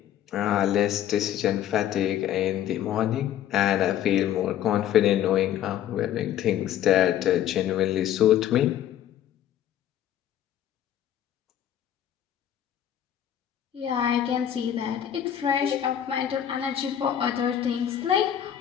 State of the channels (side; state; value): right; quieter; 10.7 dB